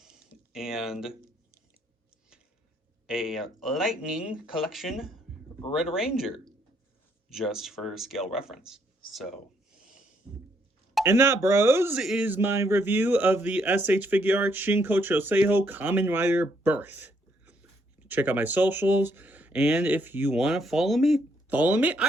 and a Lightning Collection Red Ranger, just for scale reference. So, and that, bros, is my review of the SH Figure Arts Shinkocchou Seihou Kamen Rider Birth. Check out my socials, and if you want to follow me,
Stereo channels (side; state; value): both; normal; correlation 0.71